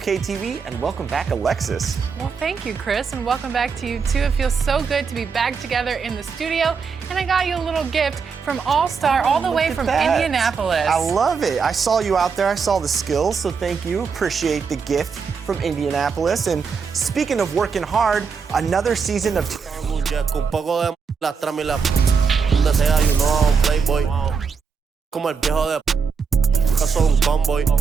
TV, and welcome back, Alexis. Well, thank you, Chris, and welcome back to you, too. It feels so good to be back together in the studio, and I got you a little gift from All-Star all the way from Indianapolis. I love it. I saw you out there. I saw the skills, so thank you. Appreciate the gift from Indianapolis. And speaking of working hard, another season of... Soy un convoy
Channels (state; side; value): quieter; left; 5.7 dB